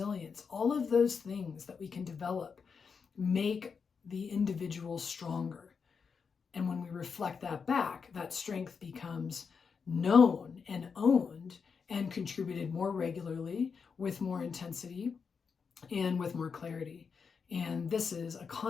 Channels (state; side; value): quieter; right; 5.8 dB